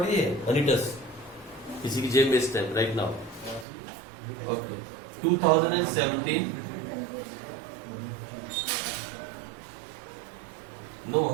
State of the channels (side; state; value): left; drops out; at 3.7 s